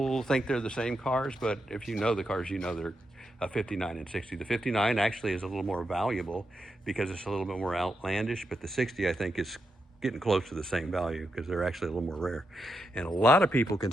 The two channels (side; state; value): both; normal; correlation 0.84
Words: think they're the same cars, but if you know the cars, you know they're a 59 and 60. The 59 actually is a little more valuable because it's a little bit more outlandish, but the 60 I think is getting close to the same value because they're actually a little more rare. And a lot of people